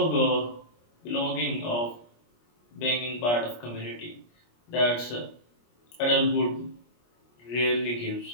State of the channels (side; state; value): right; late; 25 ms